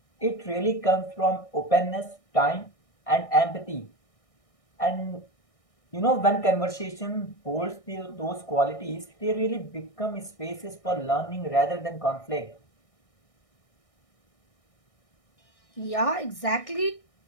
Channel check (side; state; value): right; late; 1.6 ms